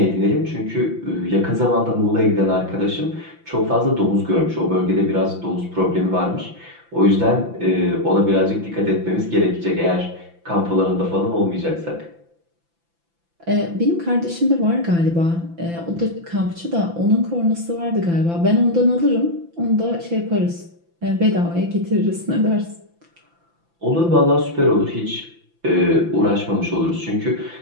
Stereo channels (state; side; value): late; left; 5.9 ms